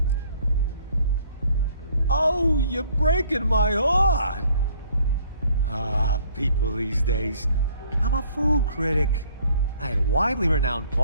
Oh, you're breaking my heart. Ah, people these days. I'm a food critic. I had a widely renowned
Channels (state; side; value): inverted; both; correlation -0.59